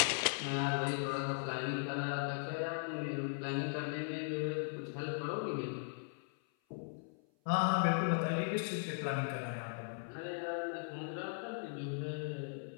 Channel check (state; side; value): silent; right; 52 dB below the other